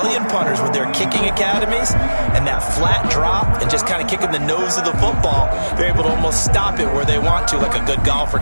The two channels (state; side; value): inverted; both; correlation -1.00